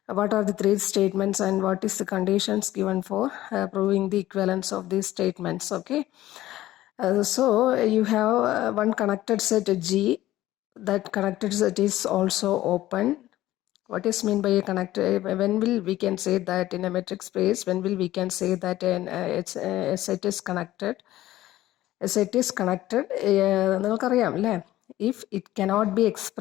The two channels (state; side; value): quieter; right; 15.1 dB